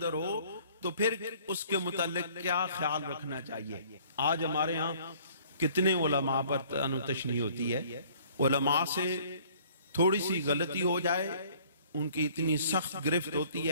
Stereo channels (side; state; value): both; inverted; correlation -0.56